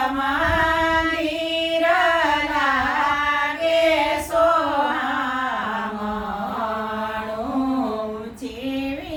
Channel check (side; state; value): both; identical; correlation 1.00